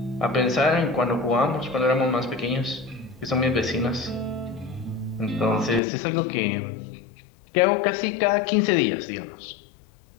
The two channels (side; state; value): right; drops out; at 5.8 s